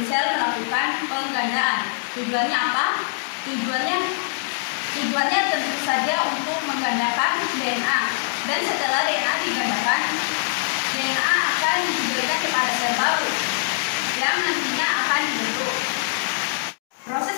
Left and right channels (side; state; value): right; silent; digital silence